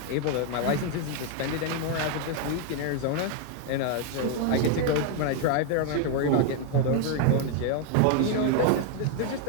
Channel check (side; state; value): both; different; correlation 0.00